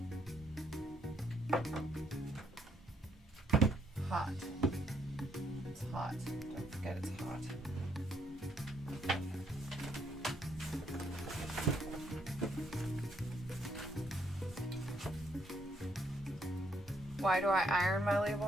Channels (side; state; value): both; normal; correlation 0.72